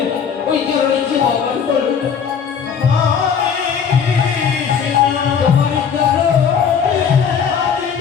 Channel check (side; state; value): right; quieter; 7.0 dB